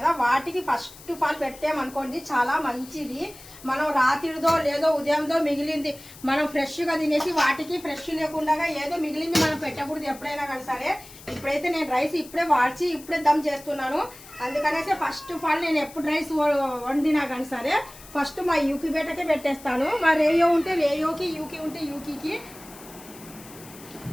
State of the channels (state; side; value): noise; left; hiss, 19 dB below the sound